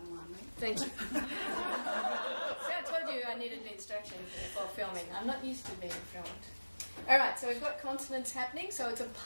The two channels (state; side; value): inverted; both; correlation -1.00